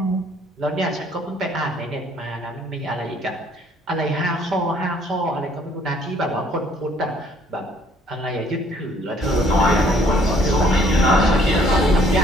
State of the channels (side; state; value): both; normal; correlation 0.62